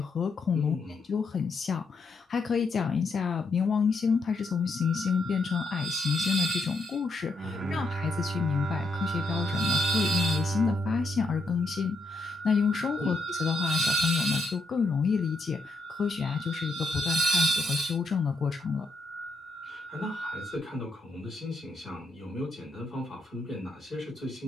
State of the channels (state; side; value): quieter; right; 3.0 dB